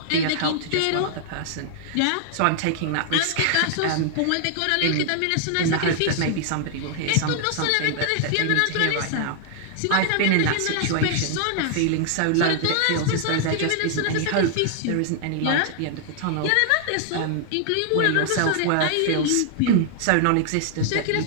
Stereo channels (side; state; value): both; different; correlation 0.00